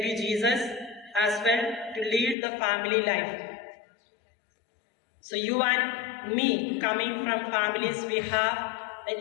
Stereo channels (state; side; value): drops out; right; at 2.4 s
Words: Jesus as well to lead the family life. So you and me, coming from families, we have an